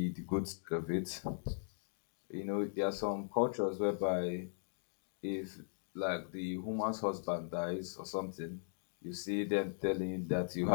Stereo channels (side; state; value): right; silent; digital silence